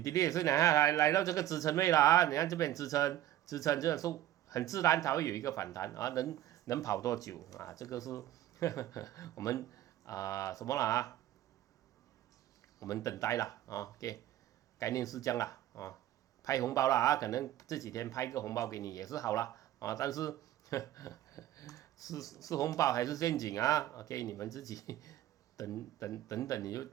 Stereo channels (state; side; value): quieter; left; 13.3 dB